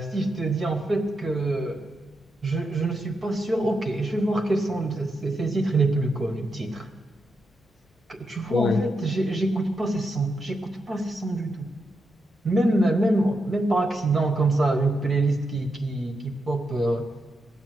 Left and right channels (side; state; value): both; normal; correlation 0.84